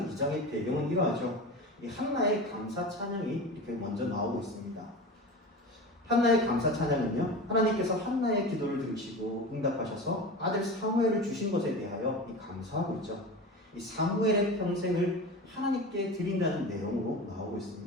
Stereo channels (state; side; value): normal; both; correlation 0.30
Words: 2장의 배경은 이러하죠. 이 한나의 감사 찬양이 이렇게 먼저 나오고 있습니다. 한나의 감사 찬양은요, 하나님께서 한나의 기도를 들으시고 응답하셔서 아들 사무엘을 주신 것에 대하여 감사하고 있죠. 이 사무엘의 평생을 하나님께 드린다는 내용으로 나오고